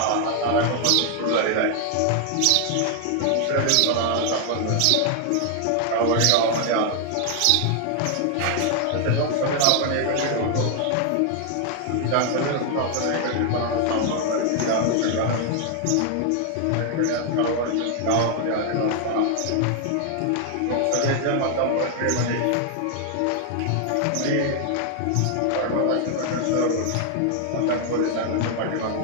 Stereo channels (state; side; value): different; both; correlation 0.00